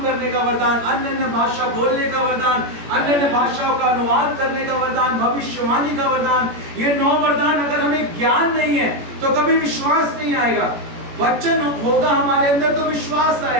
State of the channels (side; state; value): left; late; 17 ms